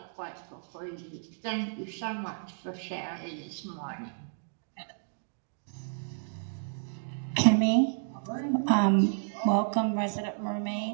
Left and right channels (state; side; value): silent; left; digital silence